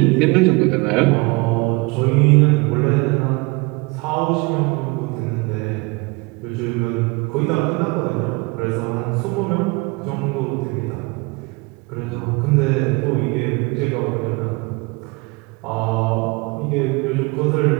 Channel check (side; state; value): left; quieter; 26.9 dB